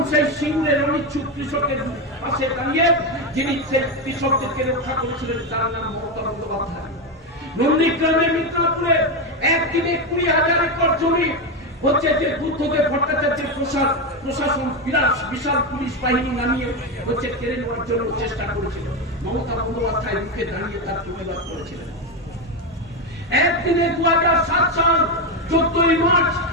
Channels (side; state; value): both; normal; correlation 0.11